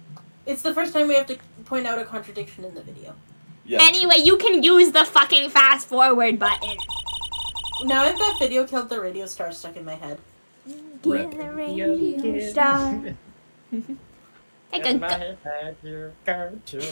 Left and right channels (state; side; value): inverted; both; correlation -1.00